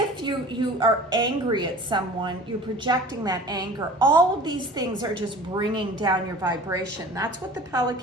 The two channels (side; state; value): both; normal; correlation 0.42